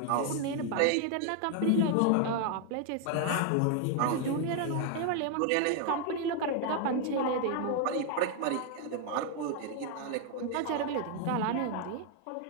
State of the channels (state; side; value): different; both; correlation 0.00